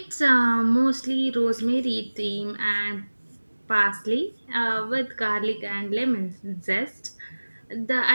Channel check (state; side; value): inverted; both; correlation -1.00